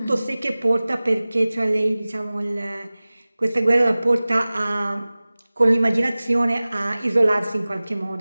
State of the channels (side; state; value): both; inverted; correlation -0.98